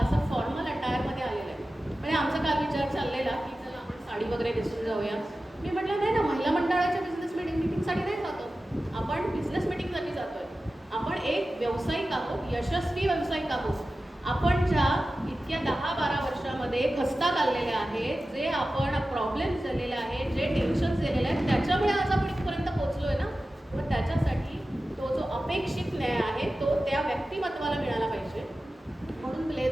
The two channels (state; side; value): normal; both; correlation 0.94